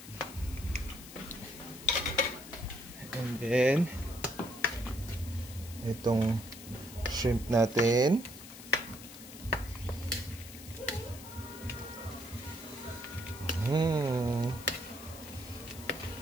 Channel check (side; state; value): left; noise; hiss, 15 dB below the sound